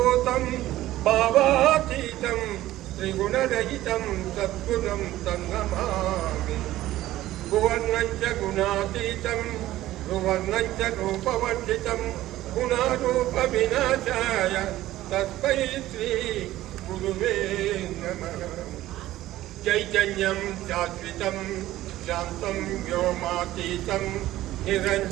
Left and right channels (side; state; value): left; quieter; 15.2 dB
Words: भावातीतं त्रिगुणरहितं सद्गुणं तन्नमामि भुवर्णं च गुणातीतं भुवर्णं च रूपवर्जितं गुणारूपविनाशाय तस्मै श्री गुरुवे नमः चैतन्यं शाश्वतं शान्तं व्योमातीतं